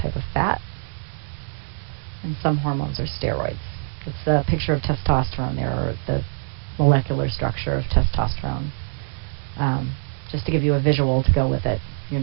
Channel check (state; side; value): silent; left; digital silence